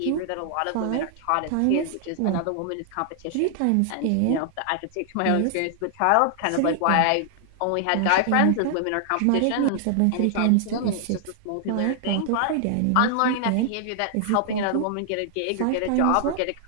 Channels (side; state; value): both; different; correlation -0.01